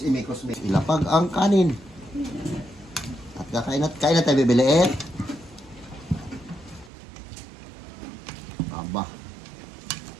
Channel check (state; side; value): drops out; left; at 6.9 s